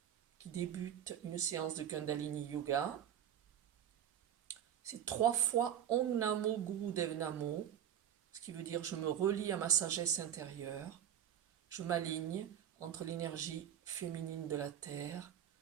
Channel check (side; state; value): left; quieter; 10.0 dB